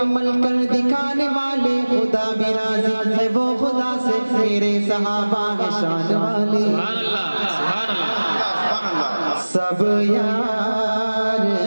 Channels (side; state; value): both; inverted; correlation -1.00